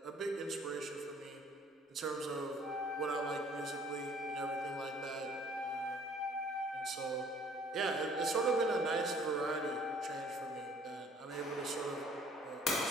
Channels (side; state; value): both; normal; correlation 0.56